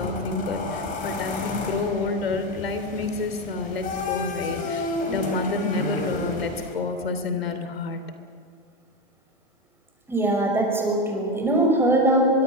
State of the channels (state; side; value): normal; both; correlation 0.16